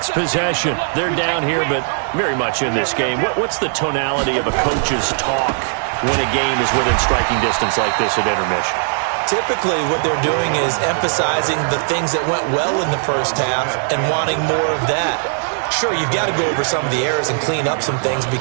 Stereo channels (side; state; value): left; silent; digital silence